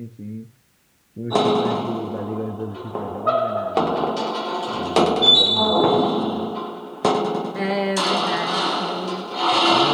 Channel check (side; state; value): both; identical; correlation 1.00